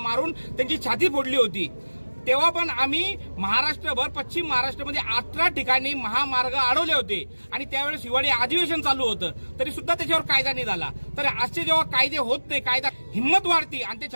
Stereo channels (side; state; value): both; inverted; correlation -1.00